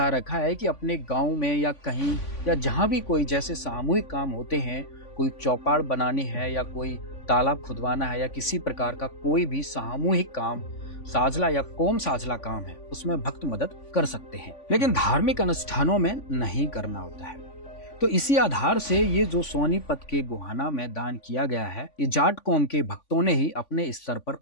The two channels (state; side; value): late; right; 3.5 ms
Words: रखा है कि अपने गांव में या कहीं या जहां भी कोई जैसे सामूहिक काम होते हैं, कोई चौपाड़ बनानी है या कोई तालाब खुदवाना है या किसी प्रकार का कोई भी सामूहिक काम, साझला या कोम साझला काम है, उसमें भक्त मदद कर सकते हैं, लेकिन धार्मिक अनुष्ठानों में नहीं करना होता है। तो इसी आधार से ये जो सोनीपत के गोहाना में दान किया गया है, ये जाट कौम के भक्तों ने ही अपने स्तर पर